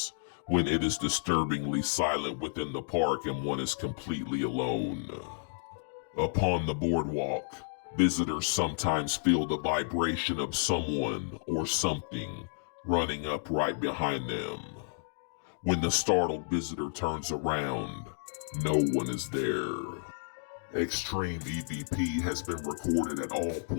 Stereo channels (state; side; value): silent; right; digital silence